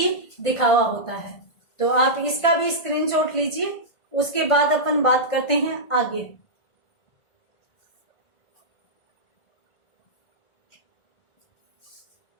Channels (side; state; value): right; late; 1.5 ms